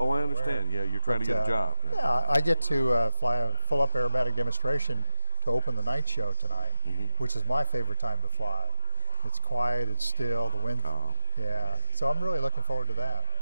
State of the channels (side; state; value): both; inverted; correlation -1.00